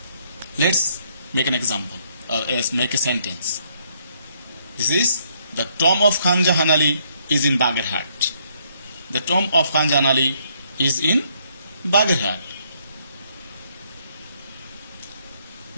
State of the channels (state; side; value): inverted; both; correlation -0.69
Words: Let's make an example. Let's make a sentence. This is the tomb of Khan Jahan Ali is in Bagerhat. The tomb of Khan Jahan Ali is in Bagerhat.